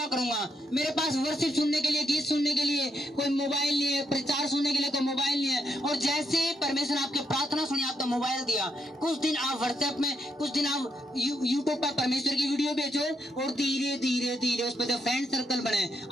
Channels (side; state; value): both; normal; correlation 0.79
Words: करूंगा। मेरे पास वर्शिप सुनने के लिए, गीत सुनने के लिए कोई मोबाइल नहीं है, प्रचार सुनने के लिए कोई मोबाइल नहीं है। और जैसे परमेश्वर ने आपके प्रार्थना सुनी, आपको मोबाइल दिया, कुछ दिन आप व्हाट्सएप में, कुछ दिन आप यूट्यूब पर परमेश्वर की वीडियो भेजो, और धीरे धीरे धीरे उस पर जो फ्रेंड सर्कल बने